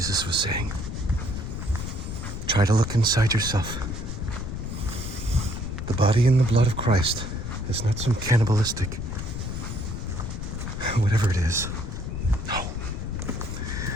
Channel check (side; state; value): left; noise; rumble, 6 dB below the sound